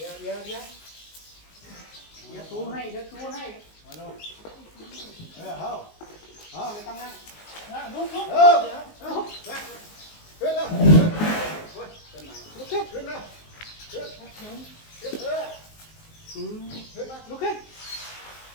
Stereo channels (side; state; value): right; late; 19 ms